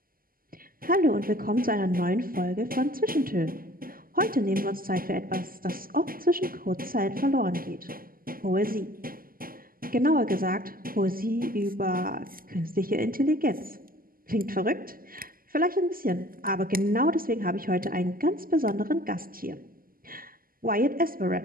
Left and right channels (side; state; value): left; late; 0.42 ms